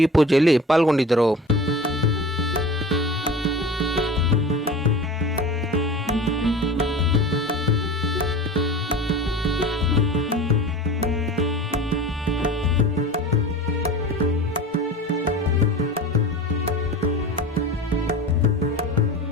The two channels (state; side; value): normal; both; correlation 0.36